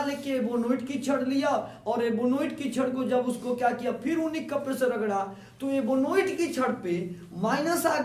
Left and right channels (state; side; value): identical; both; correlation 1.00